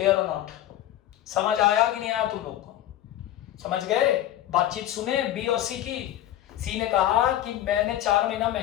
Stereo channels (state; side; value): quieter; right; 12.8 dB